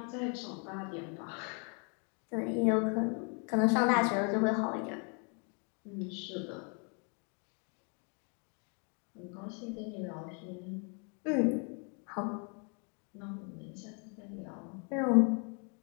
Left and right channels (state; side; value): quieter; right; 37.8 dB